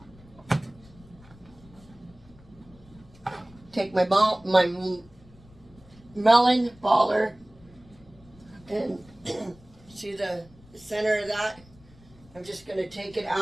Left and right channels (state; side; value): noise; left; rumble, 25 dB below the sound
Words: Take my melon baller and see the center of that? I'm just going to take it